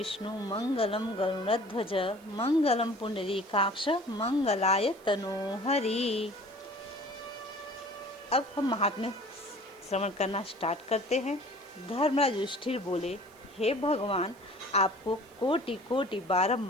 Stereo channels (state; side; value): noise; right; hiss, 28 dB below the sound